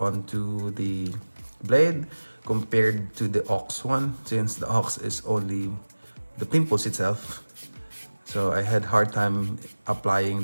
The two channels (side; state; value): both; inverted; correlation -1.00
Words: the blade compared to the ox one, since the ox is only the pimples itself. So I had hard time applying